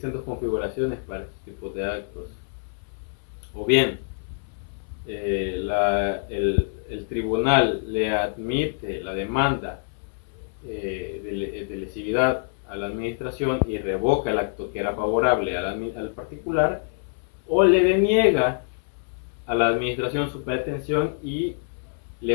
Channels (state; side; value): silent; right; 59 dB below the other